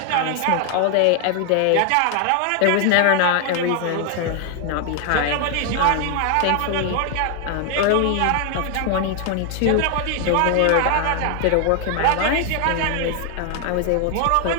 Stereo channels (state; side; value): different; both; correlation 0.00